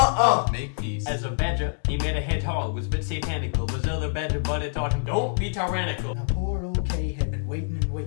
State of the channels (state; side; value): silent; right; digital silence